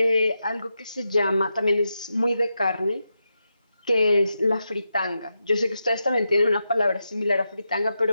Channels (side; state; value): both; inverted; correlation -0.88